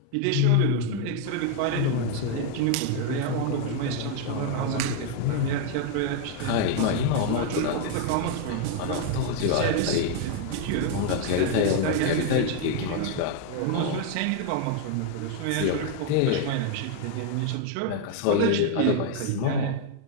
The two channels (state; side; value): different; both; correlation 0.00